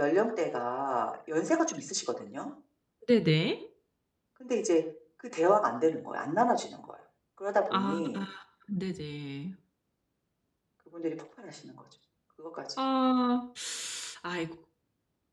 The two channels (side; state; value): both; identical; correlation 1.00